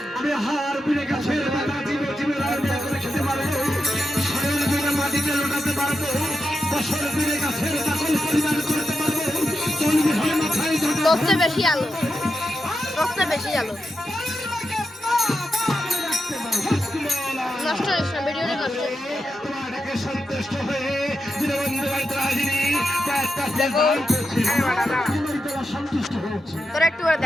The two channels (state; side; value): normal; both; correlation 0.87